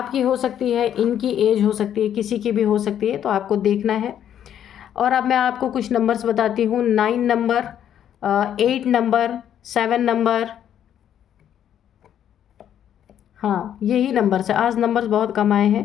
हो सकती है, इनकी एज हो सकती है, किसी की भी हो सकती है, तो आपको देखना है। और अब मैं आपको कुछ नंबर्स बताती हूँ। 9 नंबर, 8 नंबर, 7 नंबर, हाँ यही नंबर से आज नंबर्स बहुत कम आए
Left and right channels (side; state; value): right; quieter; 10.0 dB